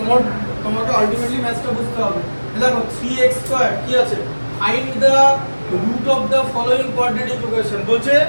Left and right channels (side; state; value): both; inverted; correlation -1.00